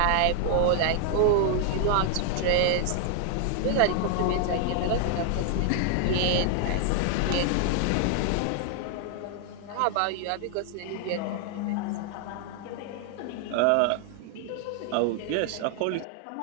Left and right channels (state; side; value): different; both; correlation 0.00